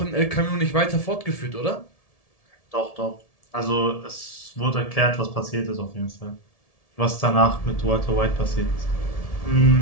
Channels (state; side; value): late; right; 1.7 ms